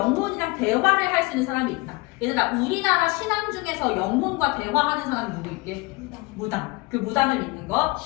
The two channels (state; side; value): quieter; right; 24.4 dB